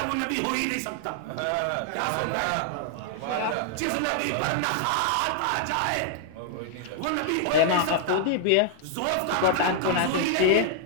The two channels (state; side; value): different; both; correlation 0.00